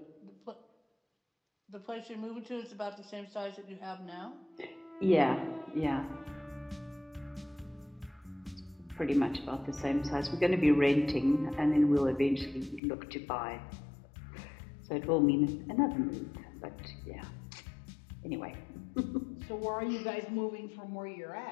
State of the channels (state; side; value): drops out; right; at 12.8 s